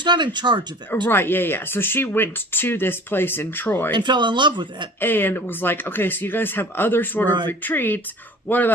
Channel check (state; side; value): normal; both; correlation 0.44